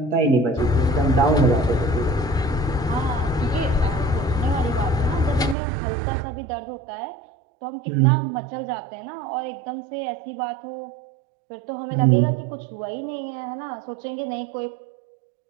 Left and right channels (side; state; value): left; drops out; at 5.6 s